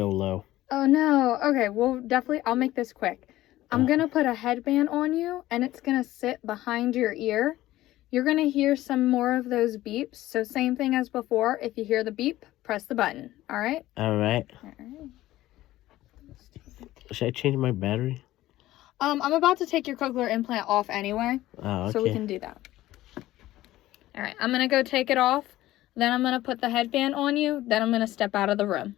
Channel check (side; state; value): right; quieter; 15.6 dB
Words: low. Oh no. Okay, well definitely I'll make this quick. I'm gonna put a headband on you and it's gonna sit behind your ear. You're gonna hear some more of those beeps. So same thing as before. If you hear the beep, press the button. All right? All right. All right. Should I change my battery? I'm about to take your cochlear implant off anyway. Oh, okay. So we can do that. All right, I'm gonna go take it off. Then I'm gonna put the headband on you. Then I'm gonna step out of the room.